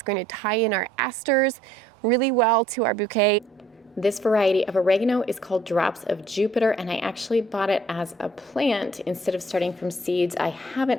going to tie in our asters really well to our bouquet. This variety of oregano is called Drops of Jupiter, and I actually bought it as a plant instead of starting from seeds. I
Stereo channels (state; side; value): normal; both; correlation 0.60